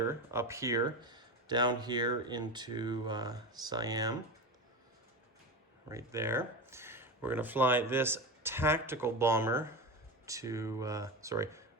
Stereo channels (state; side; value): normal; both; correlation 0.22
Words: up here, down here into Siam, right there. We're going to fly this tactical bomber to,